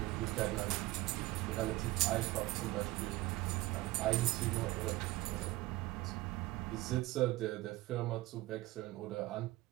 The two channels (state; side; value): quieter; left; 18.7 dB